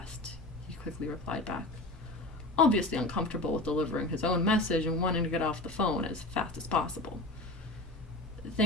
he quickly replied back, obviously uncomfortable with delivering his own message and wanting to get off the phone as fast as possible.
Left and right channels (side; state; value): both; normal; correlation 0.30